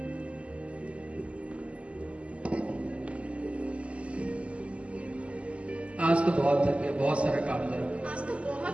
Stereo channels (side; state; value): left; late; 0.060 ms